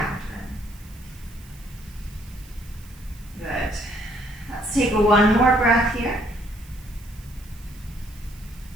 Good. Let's take one more breath here.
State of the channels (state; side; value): noise; right; hiss, 23 dB below the sound